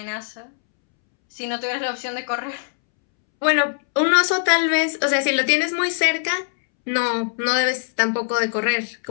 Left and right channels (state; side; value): silent; right; 65 dB below the other